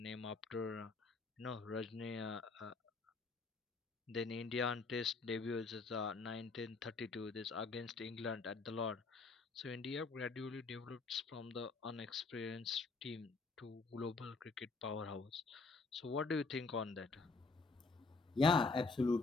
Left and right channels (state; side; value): quieter; right; 4.0 dB